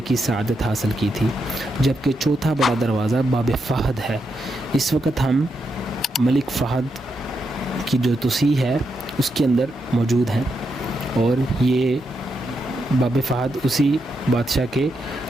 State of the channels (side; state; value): both; normal; correlation 0.83